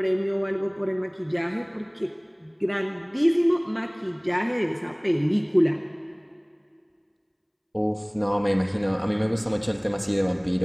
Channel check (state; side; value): identical; both; correlation 1.00